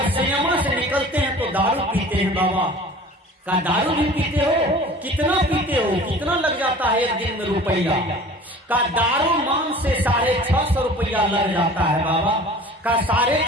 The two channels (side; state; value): both; normal; correlation 0.44